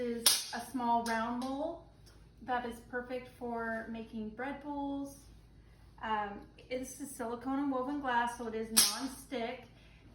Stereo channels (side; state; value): both; identical; correlation 1.00